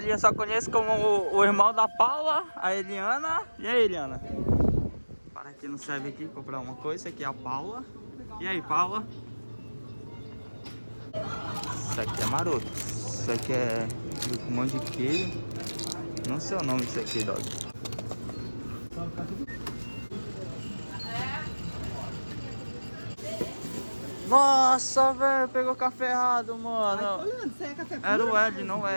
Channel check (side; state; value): both; inverted; correlation -1.00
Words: só conheço como o irmão da Paula, a Eliana. E aí, Eliana? Para aqui não serve aqui, comprar uma coisa. Esse aqui é a Paula. E aí, Paula? Isso aqui é maroto. Isso aqui é um monte de queijo. Não sei o nome disso aqui, dog. Nossa, velho, pegou café errado, mano. Isso aí é café puro? Era o L, não